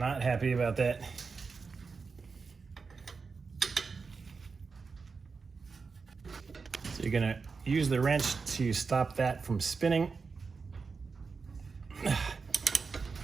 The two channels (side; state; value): left; quieter; 4.8 dB